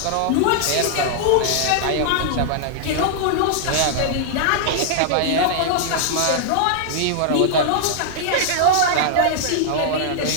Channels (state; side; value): different; both; correlation -0.01